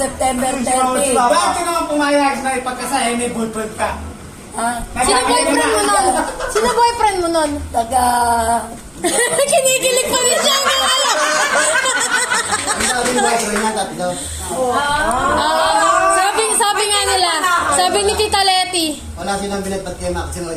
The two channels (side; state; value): both; identical; correlation 1.00